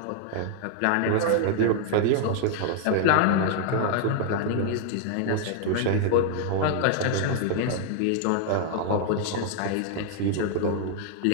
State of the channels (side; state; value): both; different; correlation 0.00